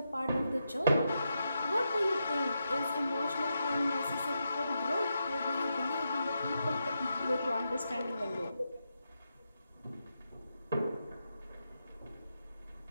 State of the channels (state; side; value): inverted; both; correlation -0.85